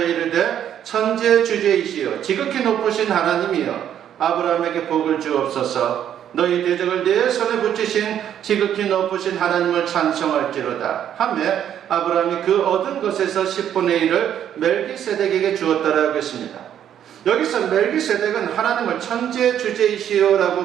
이르되 천지의 주제이시여 지극히 높으신 하나님이여 아브라함에게 복을 주옵소서 너희 대적을 내 손에 붙이신 지극히 높으신 하나님을 찬송할지로다 하며 아브라함이 그 얻은 것에서 10분의 1을 멜기세덱에게 주었다라고 했습니다. 여기서 멜기세덱은 하나님을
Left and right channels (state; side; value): quieter; left; 10.0 dB